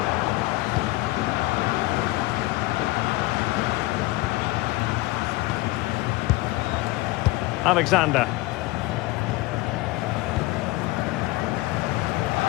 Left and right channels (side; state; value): right; quieter; 19.9 dB